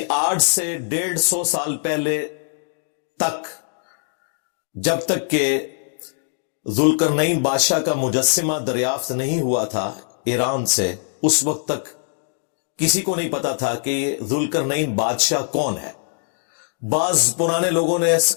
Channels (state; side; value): silent; right; digital silence